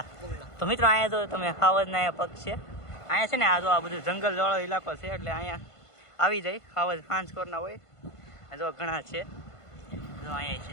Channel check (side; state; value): right; late; 1.5 ms